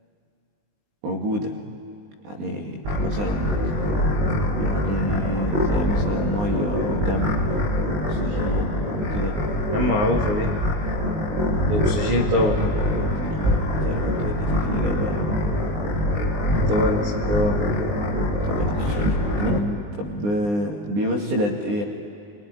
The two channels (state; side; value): late; left; 19 ms